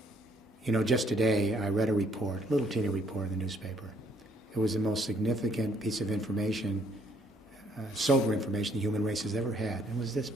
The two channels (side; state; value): both; normal; correlation 0.67